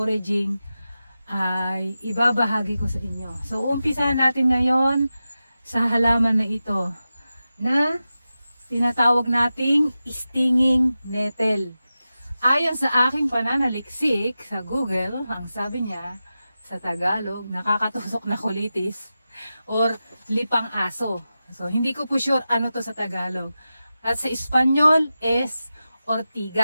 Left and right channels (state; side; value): inverted; both; correlation -0.93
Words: ay ibabahagi ko sa inyo. So, umpisahan natin ngayon sa halaman na ito na tinatawag nating stinging nettle. Ayon sa aking pananaliksik sa Google, ang sabi niya, sa Tagalog, nakakatusok na kulitis or lipang aso. So, hindi ko po sure ano to sa Tagalog. At sa Espanyol is